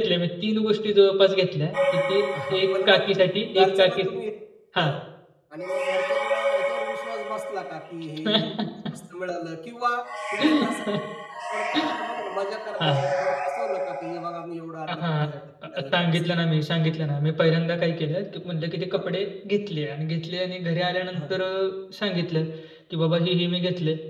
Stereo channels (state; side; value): identical; both; correlation 1.00